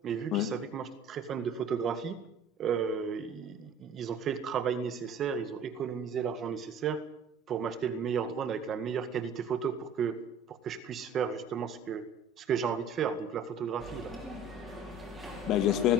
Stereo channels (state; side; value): normal; both; correlation 0.46